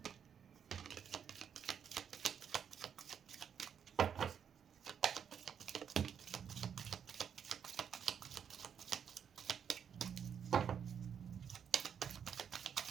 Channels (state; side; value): quieter; left; 7.9 dB